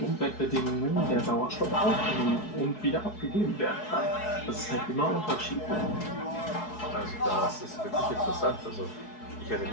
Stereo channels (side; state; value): right; late; 4.7 ms